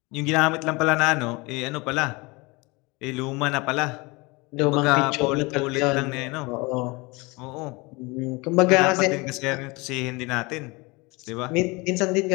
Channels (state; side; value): quieter; right; 25.6 dB